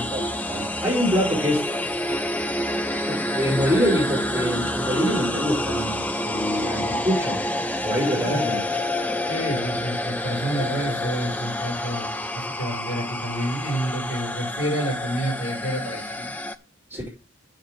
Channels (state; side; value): normal; both; correlation 0.67